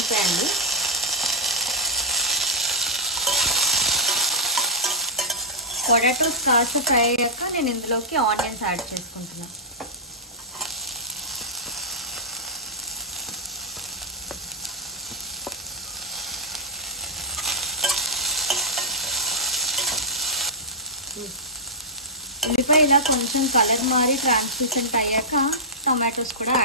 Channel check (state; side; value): normal; both; correlation -0.11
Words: అండి. పొటాటోస్ కాస్త ఫ్రై అయ్యాక నేను ఇందులోకి ఆనియన్స్ యాడ్ చేసుకుంటున్నాను. ఉల్లిపాయ ఇలా కొంచెం కలర్ మారి ట్రాన్స్లూసెంట్ అయ్యాక టమాటోస్ కూడా